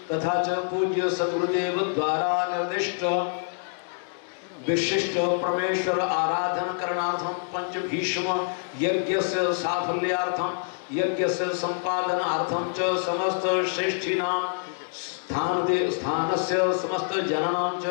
तथा च पूज्य सद्गुरुदेव द्वारा निर्दिष्ट विशिष्ट परमेश्वर आराधन करणार्थम पंच भीष्म यज्ञस्य साफल्यार्थम यज्ञस्य संपादनार्थम च समस्त श्रेष्ठीनां स्थानस्य समस्त जनानां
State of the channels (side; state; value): right; silent; digital silence